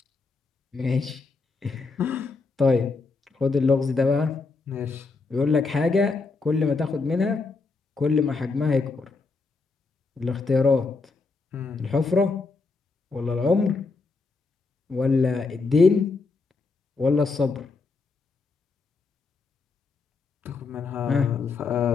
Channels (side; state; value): right; quieter; 4.1 dB